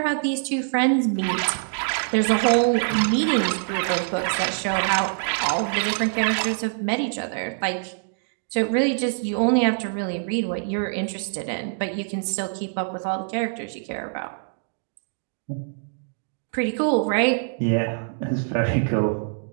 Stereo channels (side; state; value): left; silent; digital silence